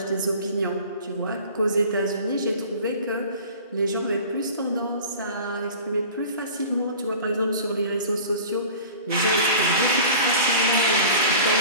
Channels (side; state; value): both; inverted; correlation -0.41